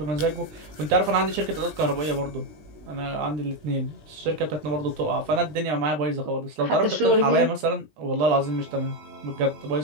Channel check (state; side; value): late; left; 20 ms